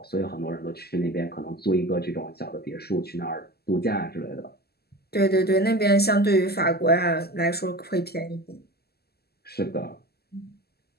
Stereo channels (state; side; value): late; right; 0.46 ms